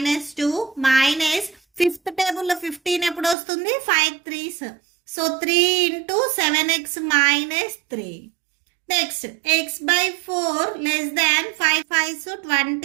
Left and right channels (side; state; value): left; drops out; at 3.4 s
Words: 2 minus fifth టేబుల్లో 15 ఎప్పుడు వస్తుంది? 5 3s. So 3 into 7x minus 3. Next x/4 less దాన్ 5 5s